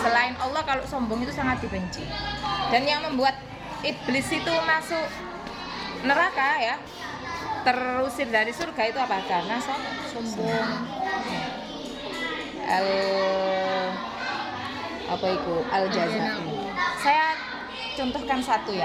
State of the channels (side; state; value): both; identical; correlation 1.00